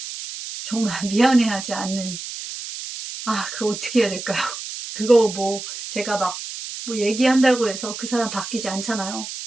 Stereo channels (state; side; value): noise; right; hiss, 9 dB below the sound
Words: 정말 미안해하지 않는, 그거 어떻게 해야 될까요? 그거 뭐 제가 막 뭐 얘기한다고 해서 그 사람 바뀌지 않잖아요.